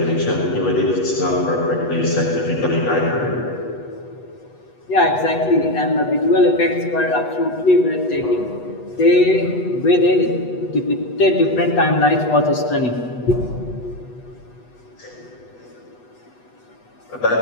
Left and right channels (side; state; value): right; late; 8.2 ms